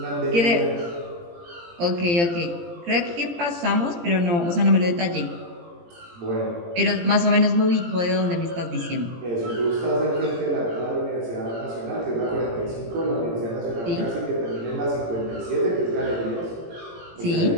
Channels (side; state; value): left; late; 17 ms